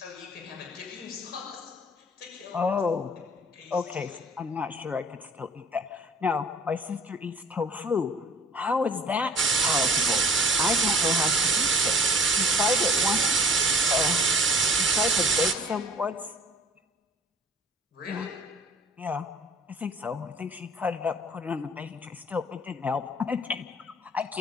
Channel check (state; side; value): normal; both; correlation 0.47